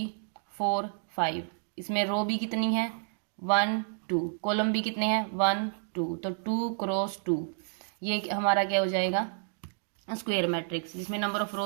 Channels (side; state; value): left; silent; digital silence